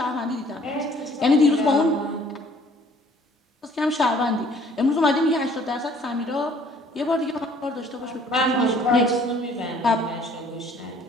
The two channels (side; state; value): both; normal; correlation 0.57